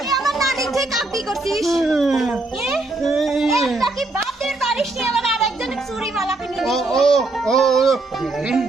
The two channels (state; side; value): quieter; left; 3.1 dB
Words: আমার নানি থেকে কাপি করছিস একটা কি বাপের বাড়িস নিয়ে আমার আরেকজনের চুরি মালা কিনে দিস